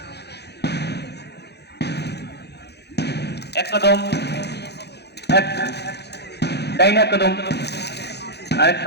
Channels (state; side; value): late; right; 0.48 ms